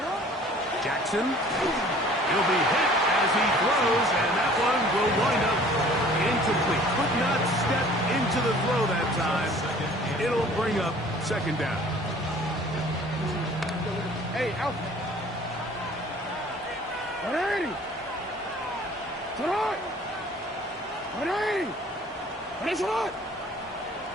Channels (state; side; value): normal; both; correlation 0.51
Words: Jackson. He'll be hit as he throws, and that one will wind up incomplete. Could not step into the throw that time. It'll bring up 2nd down. Hey, out.